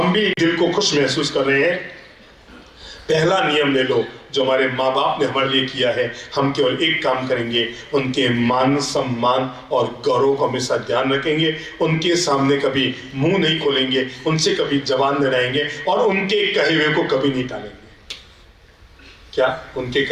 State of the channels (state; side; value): identical; both; correlation 1.00